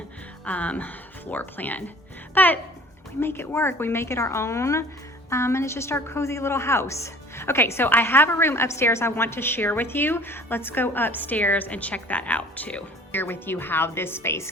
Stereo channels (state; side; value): normal; both; correlation 0.48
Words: floor plan, but we make it work. We make it our own, and it's just our cozy little house. Okay, so I have a room upstairs I want to share with you. Let's go upstairs and check that out too. Share with you how this space